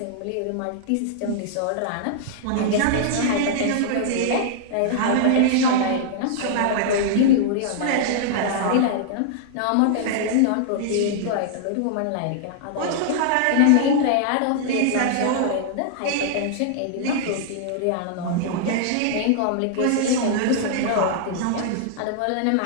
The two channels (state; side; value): different; both; correlation -0.01